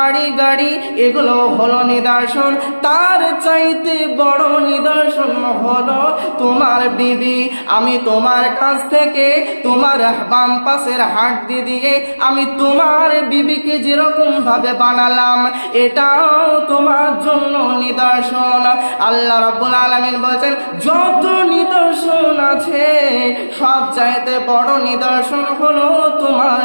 গাড়ি, এগুলো হলো নিদর্শন। তার চাইতে বড় নিদর্শন হলো তোমার বিবি। আমি তোমার কাছ থেকে তোমার বাম পাশের হাড্ডি দিয়ে আমি তোমার বিবিকে যেরকম ভাবে বানালাম, এটাও তোমার জন্য নিদর্শন। আল্লাহ রাব্বুল আলামিন বলেন যত নিদর্শন আছে সব চাইতে বড় নিদর্শন হলো তোমার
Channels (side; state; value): both; inverted; correlation -1.00